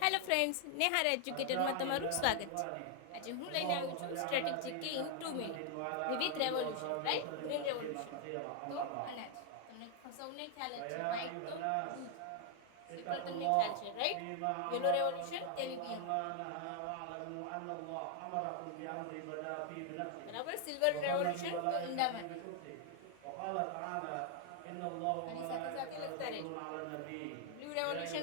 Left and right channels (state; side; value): different; both; correlation 0.00